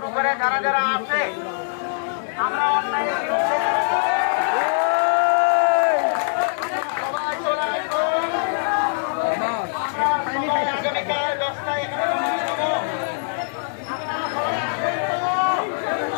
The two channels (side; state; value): right; silent; digital silence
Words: করে যারা যারা আছে আমরা অন্যায়ের বিরুদ্ধে আগামীকাল 10টায় এখানে